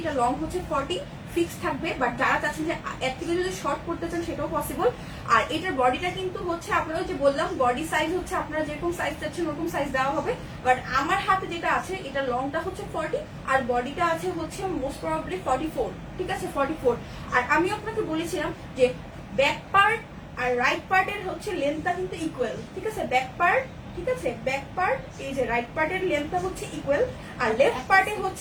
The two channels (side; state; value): both; identical; correlation 1.00